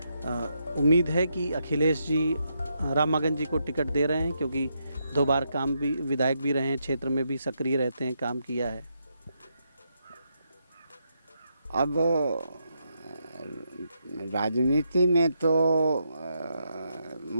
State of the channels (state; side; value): inverted; both; correlation -0.80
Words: उम्मीद है कि अखिलेश जी राम मगन जी को टिकट दे रहे हैं, क्योंकि 2 बार काम भी, विधायक भी रहे हैं, क्षेत्र में भी सक्रिय रहते हैं, काम किया है। अब राजनीति में तो